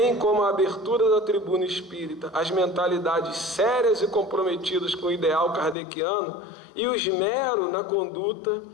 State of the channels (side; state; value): right; drops out; at 5.8 s